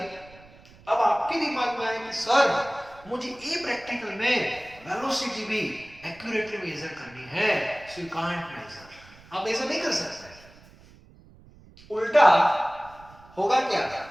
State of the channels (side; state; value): right; noise; rumble, 24 dB below the sound